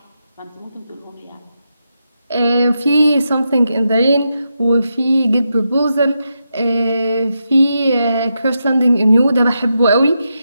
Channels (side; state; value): both; inverted; correlation -0.86